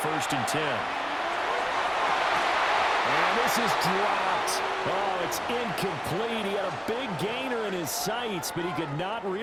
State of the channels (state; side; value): identical; both; correlation 1.00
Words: and 10. And this is dropped. Oh, it's incomplete. He had a big gainer in his sights, but he could not